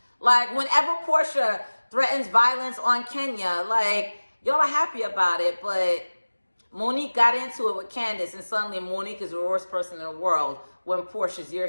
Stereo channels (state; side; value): inverted; both; correlation -1.00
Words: Like, whenever Portia threatens violence on Kenya, like, y'all are happy about it, but Monique got into it with Candace, and suddenly Monique is the worst person in the world when Portia's your